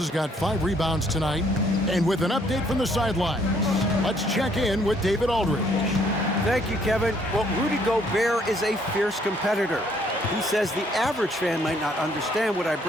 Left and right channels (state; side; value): normal; both; correlation 0.66